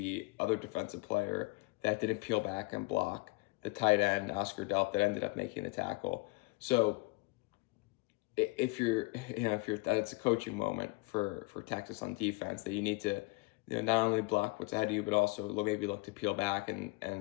other defensive player that didn't peel back and block the tight end, Oscar Delp, that ended up making the tackle. So if you're that's a coaching moment for Texas on defense, that you need to not only block what's ahead of you, but also maybe look to peel back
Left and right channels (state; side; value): quieter; right; 24.3 dB